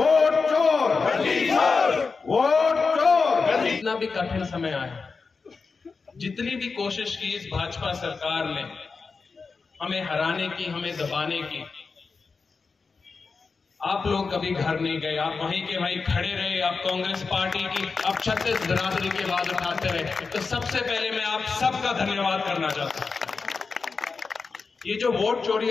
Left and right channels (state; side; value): quieter; right; 4.6 dB